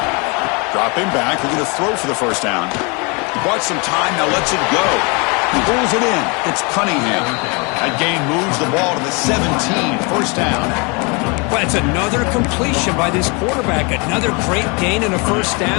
Dropping back, looking to throw for the 1st down. Bought some time, now lets it go. He pulls it in. It's Cunningham. That gain moves the ball to the 17, 1st down. Well, it's another completion by this quarterback. Another great gain and a 1st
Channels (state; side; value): quieter; right; 31.0 dB